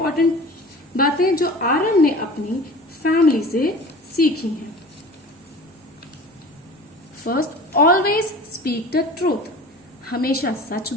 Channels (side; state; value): both; normal; correlation 0.39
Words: बातें जो आर्यन ने अपनी फैमिली से सीखी हैं. First, always speak the truth, हमेशा सच